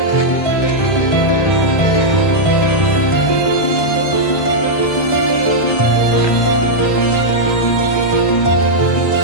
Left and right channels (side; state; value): right; late; 1.3 ms